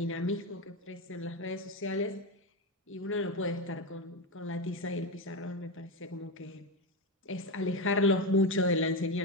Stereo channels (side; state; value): both; normal; correlation 0.14